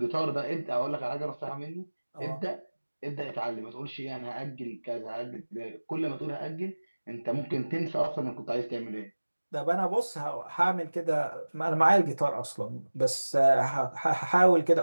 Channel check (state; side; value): inverted; both; correlation -1.00